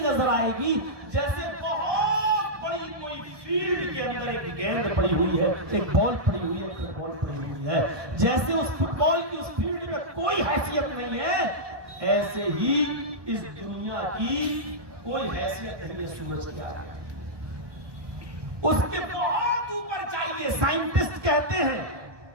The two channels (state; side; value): late; left; 1.2 ms